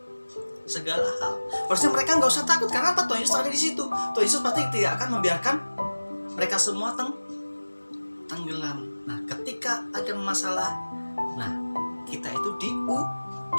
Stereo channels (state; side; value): inverted; both; correlation -1.00